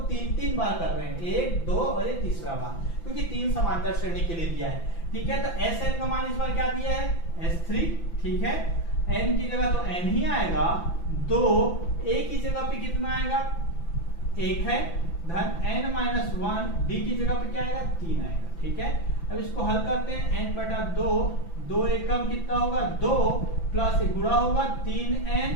3 बार कर रहे हैं, 1, 2 और ये तीसरा बार, क्योंकि 3 समांतर श्रेणी के लिए दिया है, ठीक है। तो Sn का मान इस बार क्या दिया है S3, ठीक है, n की जगह तो n ही आएगा, 2 a की जगह पे कितना आएगा 1 है, धन n-1 d की जगह पे क्या आएगा 3 आएगा, ठीक है। अब इसको हल करते हैं, n बटा 2, 2 एकम कितना होगा 2, प्लस गुणा होगा 3n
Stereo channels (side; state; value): right; late; 5.9 ms